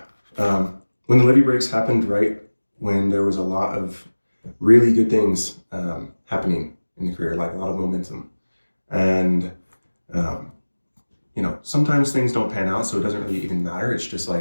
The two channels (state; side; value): inverted; both; correlation -1.00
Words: When the Levee Breaks happened right when there was a lot of really good things happening in the career, like a lot of momentum. And, sometimes things don't pan out, so it doesn't really even matter. It's just